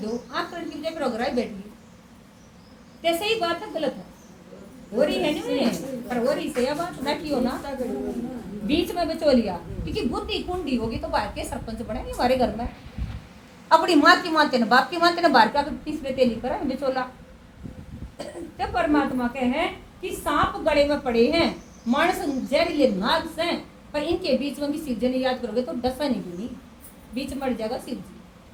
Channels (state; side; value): identical; both; correlation 1.00